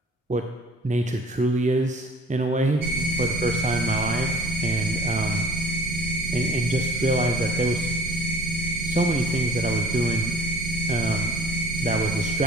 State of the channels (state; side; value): normal; both; correlation 0.50